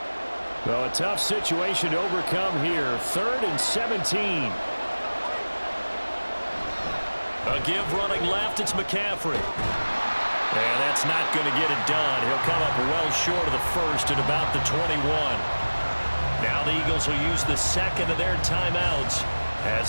Well, a tough situation to overcome here. 3rd and 17. A give running left. It's McCaffrey. And that's not going to get it done. He'll come up well short of the first at about the 21. Now the Eagles will use the second of their timeouts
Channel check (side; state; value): both; inverted; correlation -1.00